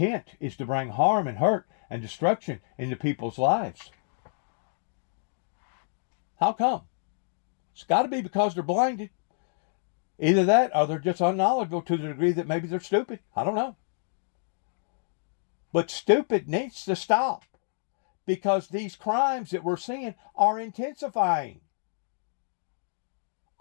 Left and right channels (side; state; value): right; silent; digital silence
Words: is to bring harm and hurt and destruction into people's lives. How come? It's got to be because they're blinded. Either that, or they're just unknowledgeable to the degree that maybe they're stupid. I don't know. But stupid needs to stop, because these crimes that we're seeing are intensifying